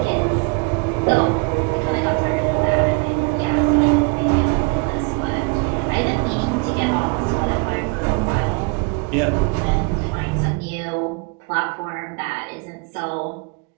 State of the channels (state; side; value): quieter; left; 31.8 dB